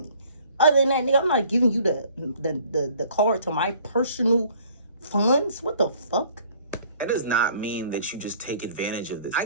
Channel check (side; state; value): both; inverted; correlation -0.55